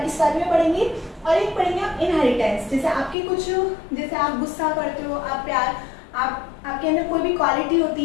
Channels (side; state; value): right; drops out; at 3.2 s